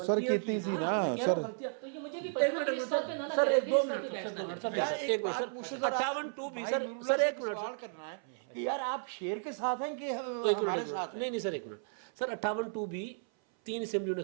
सर, कितनी सी ना सर, तो ये मुझे भी सर एक 2 मिनट एक मिनट सर 58(2)B सर एक मिनट सवाल करना है कि यार आप शेर के साथ हैं कि हमारे साथ हैं? नहीं सर एक मिनट सर 58(2)B 3 असेंबलियों ने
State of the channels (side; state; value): left; silent; 55 dB below the other